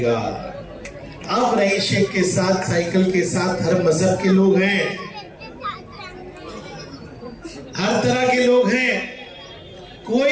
अब रईस शेख के साथ, साइकिल के साथ हर मजहब के लोग हैं, हर तरह के लोग हैं।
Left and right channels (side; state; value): both; identical; correlation 1.00